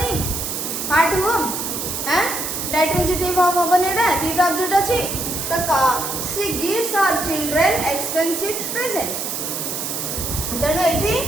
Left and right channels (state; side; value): noise; right; hiss, 4 dB below the sound